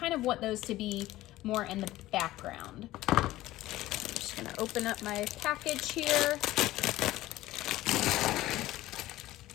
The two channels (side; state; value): right; quieter; 16.3 dB